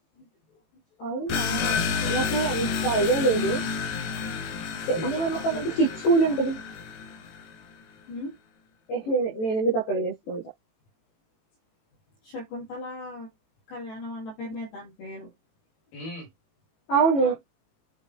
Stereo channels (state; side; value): late; right; 18 ms